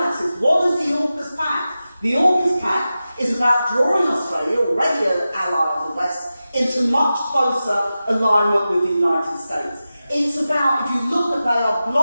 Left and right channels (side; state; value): both; inverted; correlation -0.94